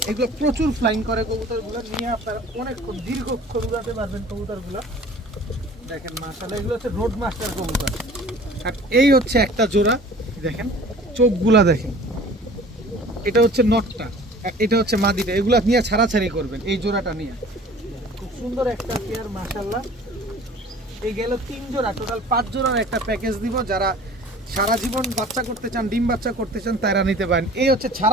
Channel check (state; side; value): normal; both; correlation 0.46